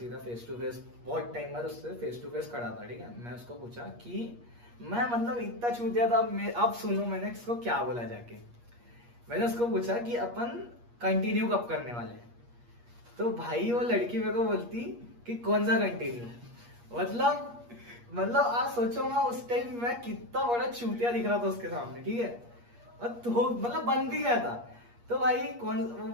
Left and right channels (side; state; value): left; late; 8.4 ms